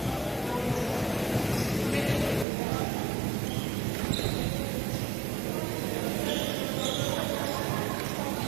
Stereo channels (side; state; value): left; drops out; at 2.5 s